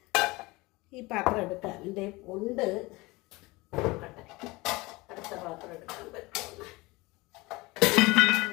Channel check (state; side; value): quieter; right; 22.7 dB